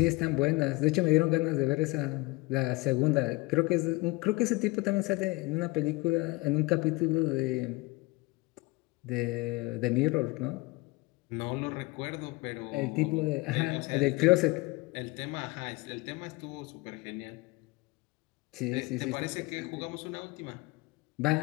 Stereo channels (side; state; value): right; quieter; 23.1 dB